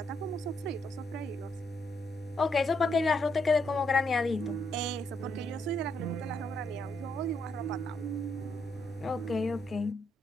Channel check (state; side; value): normal; both; correlation 0.76